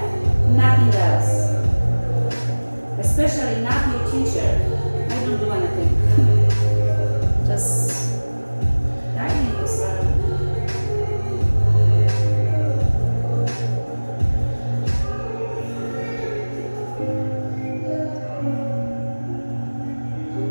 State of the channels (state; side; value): inverted; both; correlation -1.00